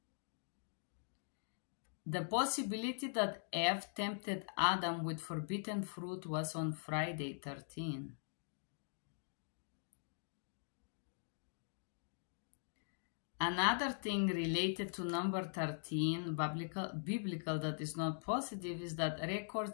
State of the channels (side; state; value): right; silent; digital silence